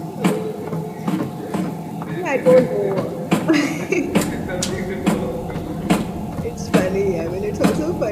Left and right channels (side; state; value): both; identical; correlation 1.00